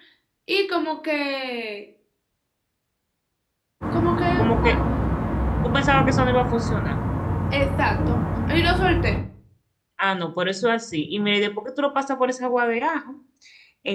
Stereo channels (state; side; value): identical; both; correlation 1.00